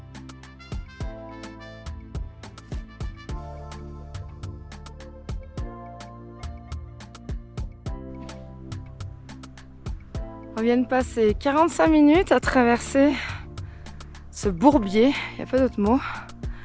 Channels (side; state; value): both; identical; correlation 1.00